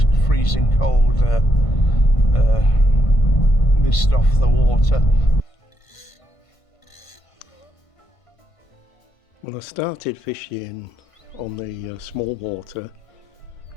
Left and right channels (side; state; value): right; late; 1.5 ms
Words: freezing cold mist off the water. Well, I started fishing on the small water